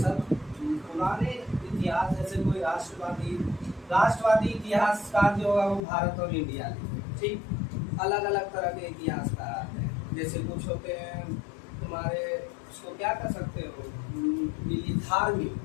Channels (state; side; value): drops out; right; at 5.9 s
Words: पुराने इतिहास, जैसे कोई राष्ट्रवादी इतिहासकार जो होगा वो भारत और इंडिया लिखे, ठीक। अलग अलग तरह के इतिहासकार आते हैं, जैसे कुछ होते हैं तुम्हारे, उसको क्या कर सकते हो, धार्मिक,